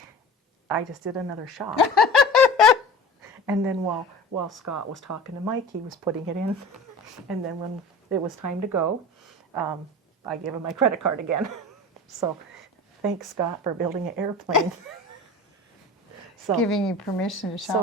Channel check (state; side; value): normal; both; correlation 0.37